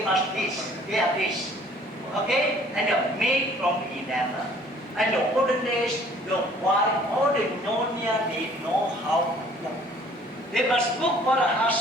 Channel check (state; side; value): normal; both; correlation 0.55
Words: must this, they are this. Okay? And they're made from enamel. And the olden days, the wife, all the Nyonya, they know how to cook. They must cook for the